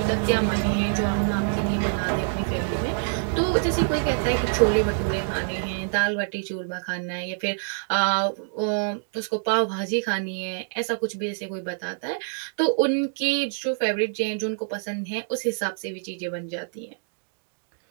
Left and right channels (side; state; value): left; silent; digital silence